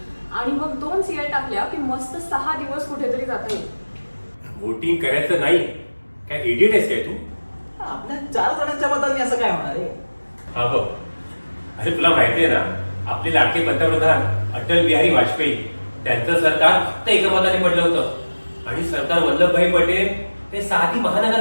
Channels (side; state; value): both; inverted; correlation -1.00